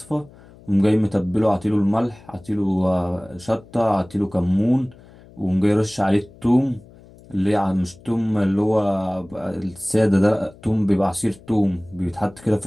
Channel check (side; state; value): left; noise; hum, 23 dB below the sound